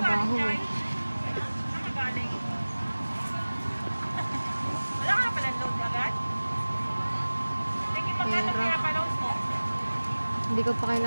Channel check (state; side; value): inverted; both; correlation -1.00